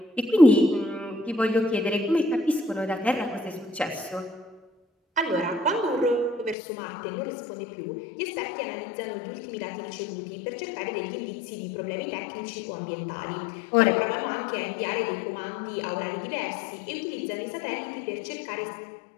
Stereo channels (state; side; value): drops out; right; at 6.6 s